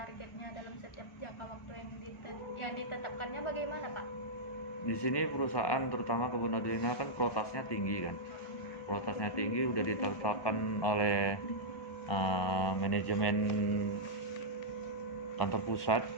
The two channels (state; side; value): late; right; 1.2 ms